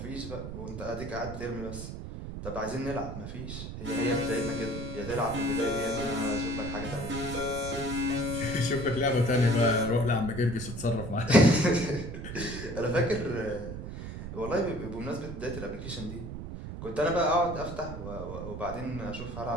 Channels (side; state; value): right; noise; rumble, 8 dB below the sound